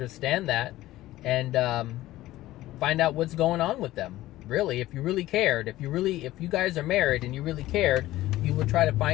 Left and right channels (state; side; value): quieter; right; 16.0 dB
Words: that and find out what's going on with them. Really, if you really cared, if you guys are married and you really cared, you would try to